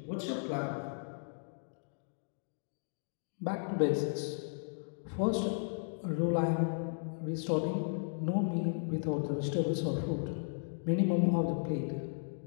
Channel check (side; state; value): right; silent; digital silence